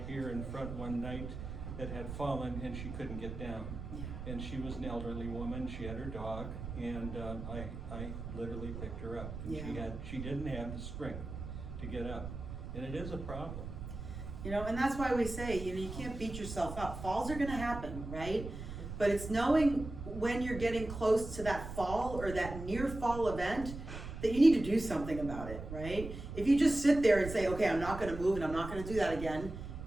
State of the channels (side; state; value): right; noise; rumble, 8 dB below the sound